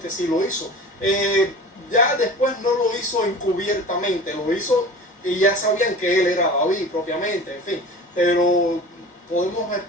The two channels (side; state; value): both; normal; correlation 0.38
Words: sí lo hizo. Ya después no lo hizo encubiertamente, lo hizo y ya sabían que él era David propiamente, en fin. Pero podemos